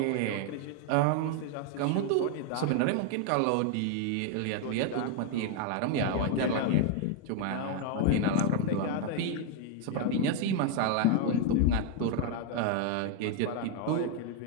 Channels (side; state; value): both; different; correlation 0.00